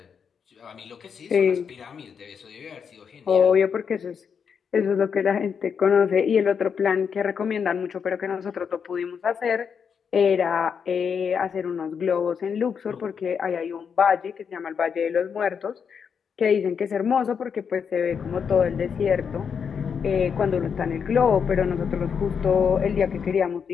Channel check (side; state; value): right; quieter; 6.7 dB